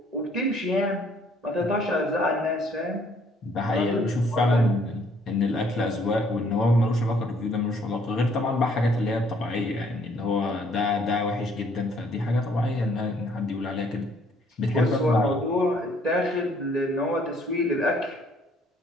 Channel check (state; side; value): normal; both; correlation 0.63